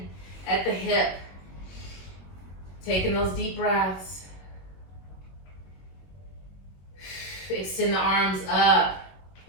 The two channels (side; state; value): right; late; 21 ms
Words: at the hip. Taking those deep breaths. Extend the arms up.